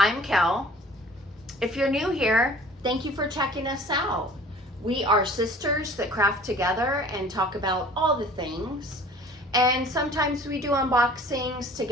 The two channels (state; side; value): normal; both; correlation 0.48